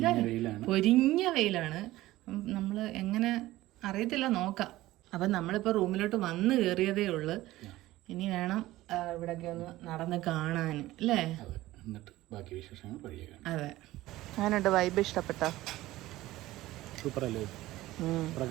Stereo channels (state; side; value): quieter; left; 16.8 dB